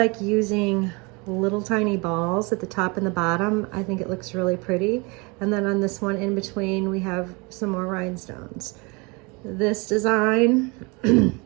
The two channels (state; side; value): quieter; left; 28.6 dB